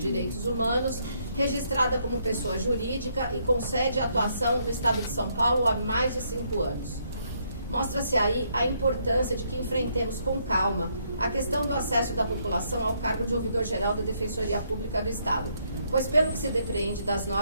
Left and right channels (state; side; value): inverted; both; correlation -0.73